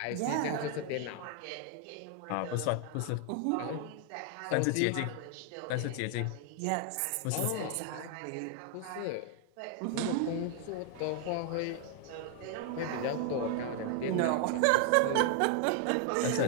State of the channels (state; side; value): different; both; correlation 0.00